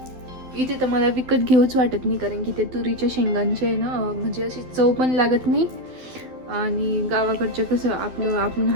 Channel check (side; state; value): left; late; 12 ms